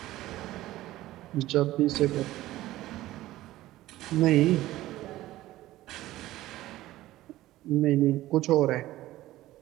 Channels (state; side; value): quieter; left; 15.9 dB